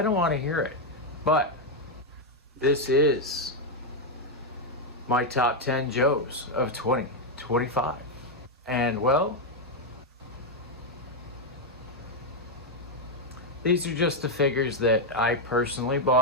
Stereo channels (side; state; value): both; normal; correlation 0.02